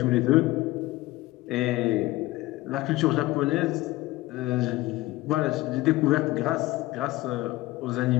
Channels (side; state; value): right; quieter; 18.5 dB